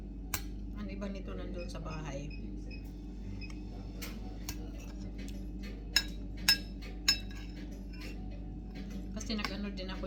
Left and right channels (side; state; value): both; identical; correlation 1.00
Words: Ang iba nito nandun sa bahay. Kasi nag-ano din ako